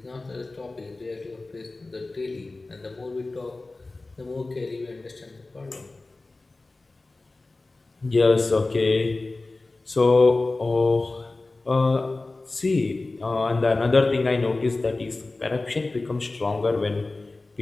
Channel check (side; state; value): right; quieter; 3.2 dB